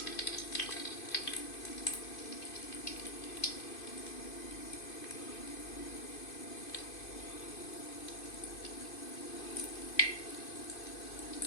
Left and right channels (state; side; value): late; right; 2.5 ms